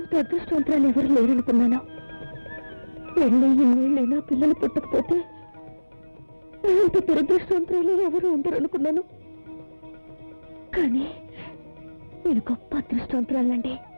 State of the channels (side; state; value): both; inverted; correlation -1.00